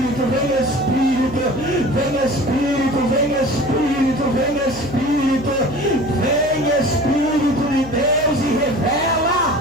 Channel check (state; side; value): noise; left; hum, 16 dB below the sound